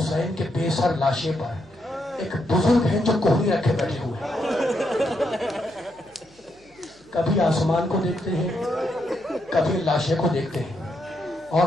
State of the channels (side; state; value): both; normal; correlation 0.79